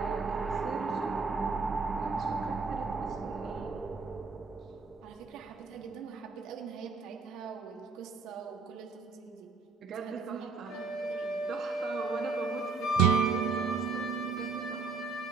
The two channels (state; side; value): quieter; left; 4.4 dB